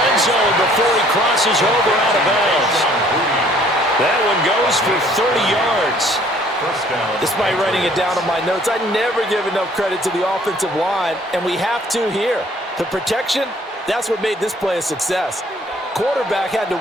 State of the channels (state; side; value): normal; both; correlation 0.59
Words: zone before he crosses over out of bounds. That one goes for 30 yards. Despite writing it down on my notes, I never give enough credit to the offensive line, and we have to here. The protection, that's what made this play a success. Quarterback had to